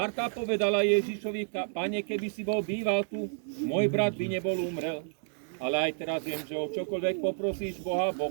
povedala Ježišovi, Pane, keby si bol býval tu, môj brat by nebol umrel. Ale aj teraz viem, že o čokoľvek poprosíš Boha,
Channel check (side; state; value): left; silent; digital silence